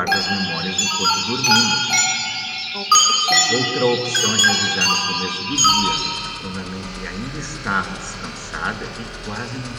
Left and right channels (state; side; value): identical; both; correlation 1.00